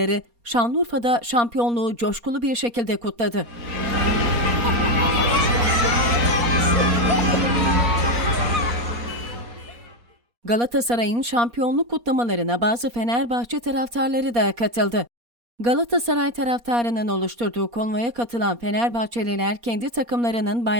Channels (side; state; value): left; late; 4.2 ms